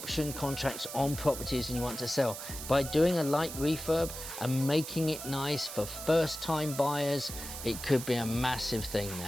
contracts on properties and you want to sell, by doing a light refurb and making it nice for first-time buyers, it could be a massive thing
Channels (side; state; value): right; noise; hiss, 9 dB below the sound